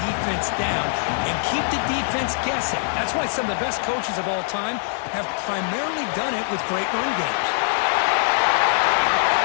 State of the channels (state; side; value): silent; right; 64 dB below the other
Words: defense down and keep the defense guessing. That's why some of the best coaches of all time have primarily done it with great run games.